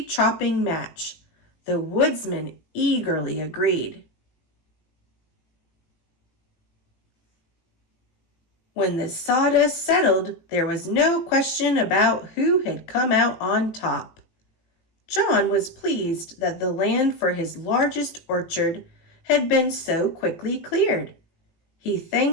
match. The woodsman eagerly agreed. When the sawdust settled, there was no question about who had come out on top. John was pleased that the land for his largest orchard had been so quickly cleared. He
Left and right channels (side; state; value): right; late; 18 ms